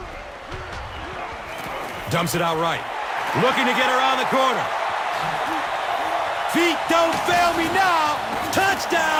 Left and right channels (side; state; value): both; identical; correlation 1.00